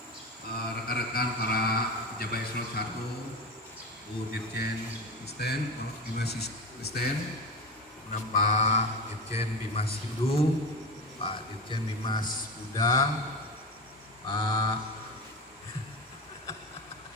rekan-rekan para pejabat eselon 1, Bu Dirjen Kristen, Bimas Kristen, Pak Dirjen Bimas Hindu, Pak Dirjen Bimas Buddha, Pak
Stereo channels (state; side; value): normal; both; correlation 0.24